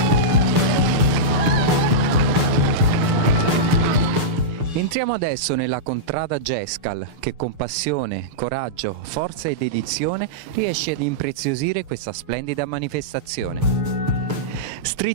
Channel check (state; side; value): late; left; 6.7 ms